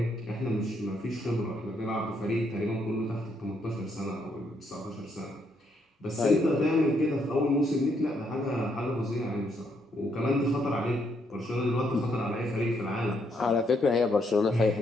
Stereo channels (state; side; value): normal; both; correlation 0.74